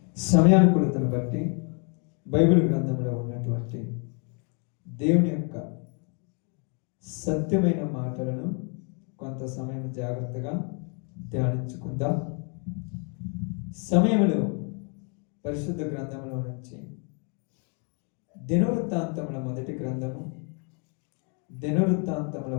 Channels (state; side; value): quieter; right; 38.0 dB